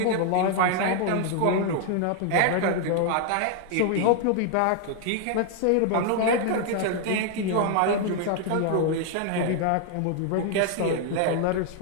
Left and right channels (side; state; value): both; different; correlation 0.00